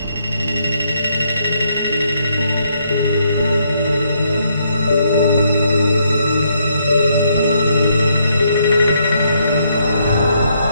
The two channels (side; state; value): both; inverted; correlation -0.73